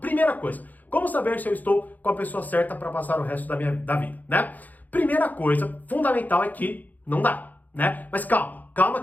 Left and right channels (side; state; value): right; late; 0.082 ms